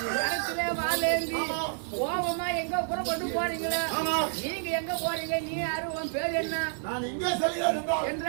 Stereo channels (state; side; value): silent; left; digital silence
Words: இடத்துல வாழேந்தி கோபமா எங்க புறப்பட்டு போறீங்களா நீங்க எங்க போறீங்க நீ யாரு உன் பேர் என்ன நான் இங்கே செல்கிறேன்